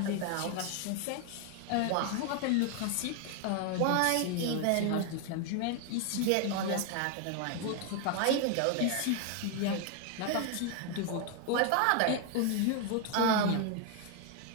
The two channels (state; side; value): different; both; correlation 0.00